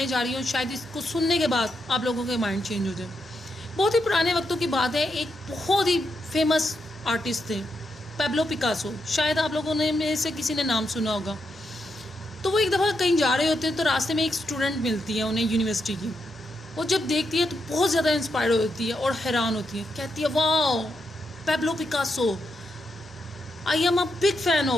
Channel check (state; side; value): normal; both; correlation 0.83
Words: जा रही हूँ, शायद इसको सुनने के बाद आप लोगों के माइंड चेंज हो जाए। बहुत ही पुराने वक्तों की बात है, एक बहुत ही फेमस आर्टिस्ट थे पैब्लो पिकासो। शायद आप लोगों ने में से किसी ने नाम सुना होगा। तो वो एक दफ़ा कहीं जा रहे होते हैं तो रास्ते में एक स्टूडेंट मिलती है उन्हें, यूनिवर्सिटी की। वो जब देखती है तो बहुत ज़्यादा इंस्पायर होती है और हैरान होती है। कहती है, wow Pablo Picasso, I am a big fan